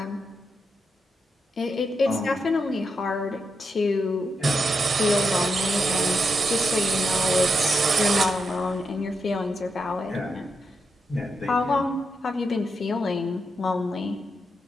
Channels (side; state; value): both; normal; correlation 0.84